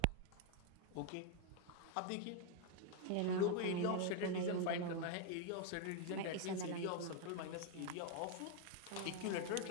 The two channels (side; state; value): both; different; correlation 0.01